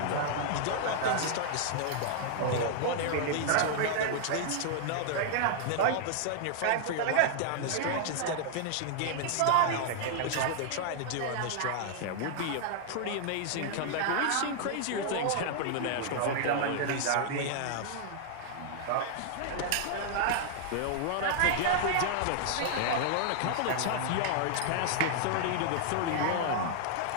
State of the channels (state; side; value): different; both; correlation -0.01